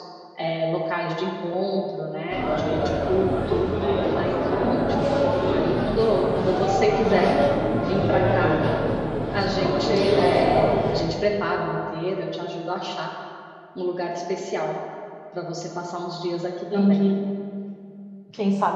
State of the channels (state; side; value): identical; both; correlation 1.00